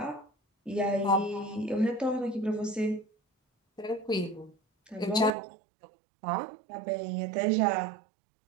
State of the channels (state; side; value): drops out; left; at 5.3 s